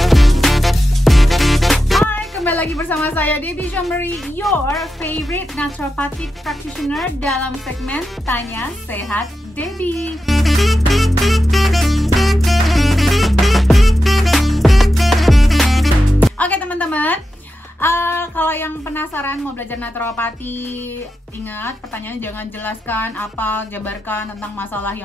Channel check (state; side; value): normal; both; correlation 0.90